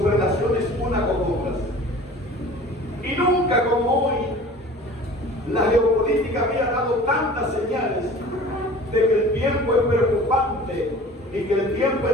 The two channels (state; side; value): normal; both; correlation 0.43